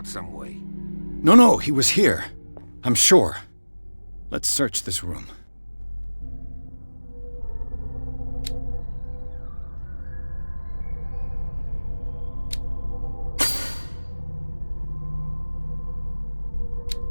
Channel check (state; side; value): inverted; both; correlation -1.00